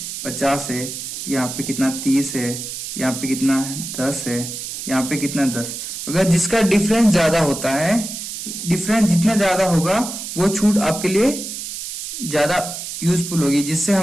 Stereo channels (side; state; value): right; noise; hiss, 7 dB below the sound